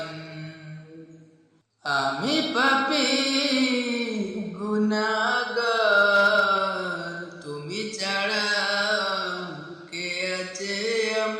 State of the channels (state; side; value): identical; both; correlation 1.00